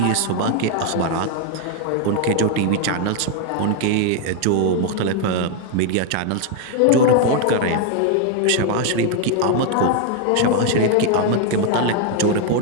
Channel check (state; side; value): different; both; correlation 0.00